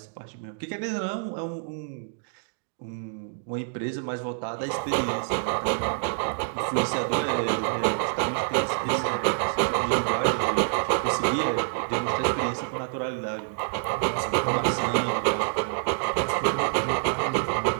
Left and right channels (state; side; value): silent; left; digital silence